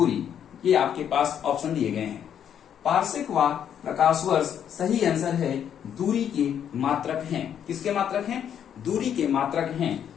ये आपके पास ऑप्शन दिए गए हैं। पार्सेक व प्रकाश वर्ष सही आंसर है, दूरी के मात्रक हैं। किसके मात्रक हैं? दूरी के मात्रक हैं।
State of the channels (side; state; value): right; quieter; 9.1 dB